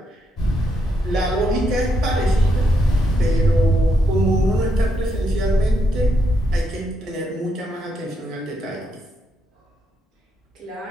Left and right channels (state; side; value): normal; both; correlation 0.79